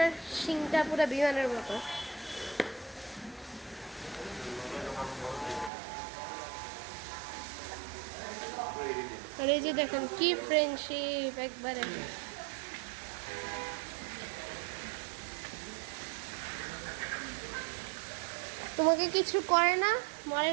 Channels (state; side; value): drops out; left; at 5.7 s